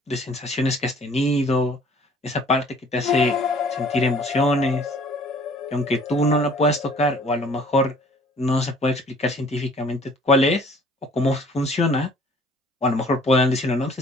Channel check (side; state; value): both; normal; correlation 0.54